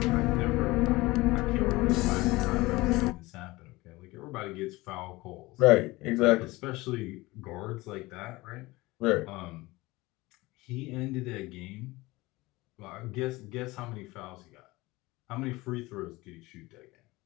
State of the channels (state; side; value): quieter; right; 20.9 dB